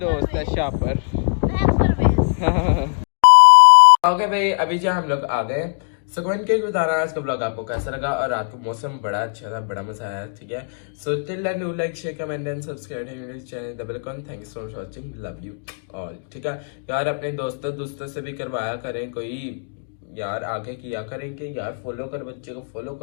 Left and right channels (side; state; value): right; silent; digital silence